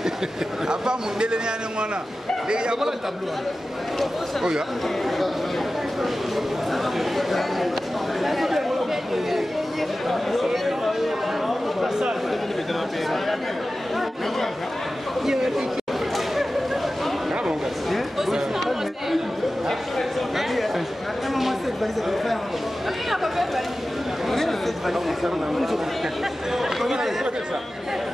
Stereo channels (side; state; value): both; normal; correlation 0.95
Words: Apa Mundele ni ane mwana. Ya voilà le tableau. Oh ya.